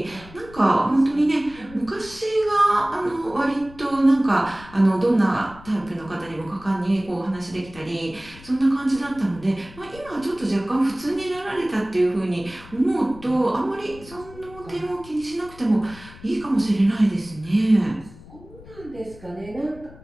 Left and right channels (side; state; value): left; noise; rumble, 19 dB below the sound